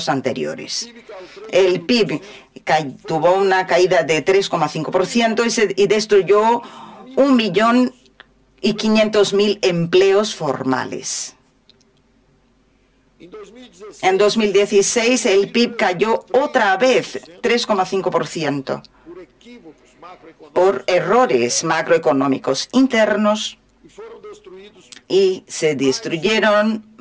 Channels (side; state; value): both; identical; correlation 1.00